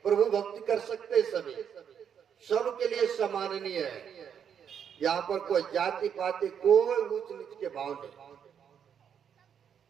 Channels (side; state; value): left; quieter; 8.1 dB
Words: प्रभु भक्ति कर सकते सभी, सबके लिए सम्माननीय है। यहाँ पर कोई जाति पाति, कोई ऊंच नीच के भाव नहीं,